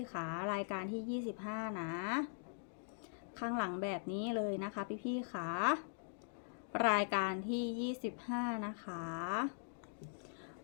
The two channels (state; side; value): silent; right; digital silence